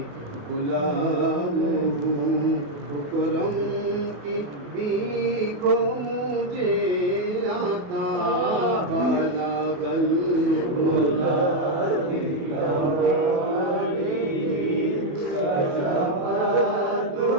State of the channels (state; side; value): late; left; 27 ms